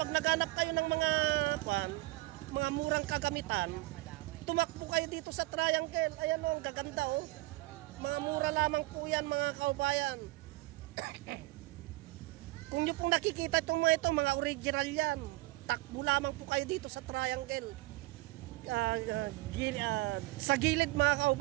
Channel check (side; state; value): left; quieter; 20.0 dB